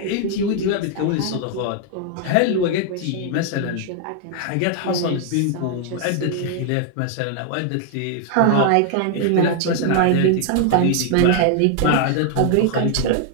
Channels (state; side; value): different; both; correlation 0.00